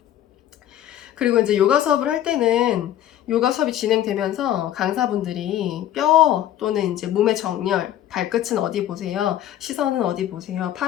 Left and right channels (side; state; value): right; quieter; 12.0 dB